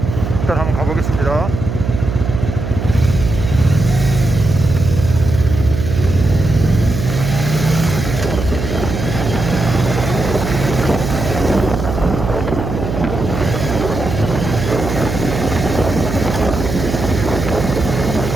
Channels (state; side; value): noise; right; hum, 5 dB below the sound